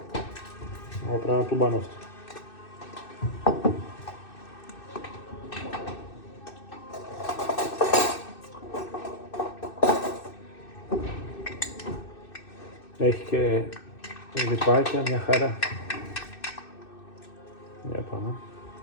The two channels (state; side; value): late; right; 2.6 ms